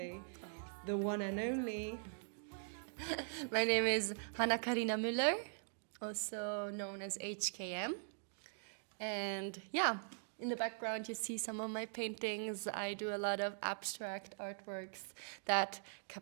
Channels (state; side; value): silent; left; digital silence